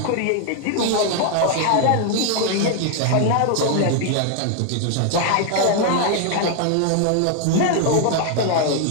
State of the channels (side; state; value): both; different; correlation 0.00